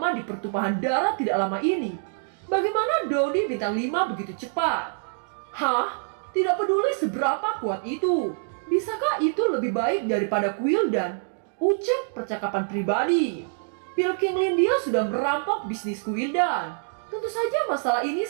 di pertumpahan darah tidak lama ini? Bagaimana Dodi bintang 5 begitu cepat? Hah? Tidak peduli seberapa kuat itu. Bisakah itu lebih baik daripada Guildan? Ucap percakapan pribadi. Pil Qingling dia sudah merampok bisnis Guildan. Tentu saja masalah ini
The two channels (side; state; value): left; silent; digital silence